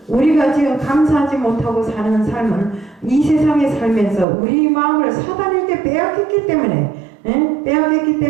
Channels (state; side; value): drops out; left; at 4.2 s